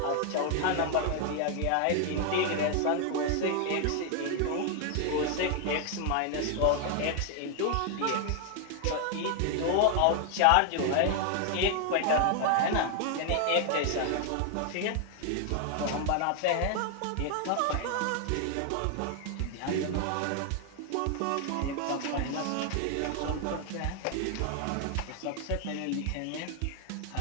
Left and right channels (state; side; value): different; both; correlation 0.00